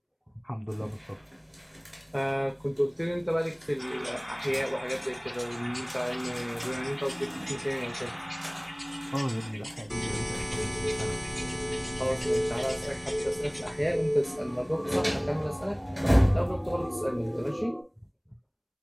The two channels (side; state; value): both; identical; correlation 1.00